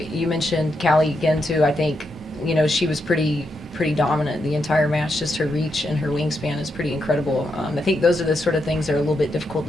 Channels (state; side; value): normal; both; correlation 0.83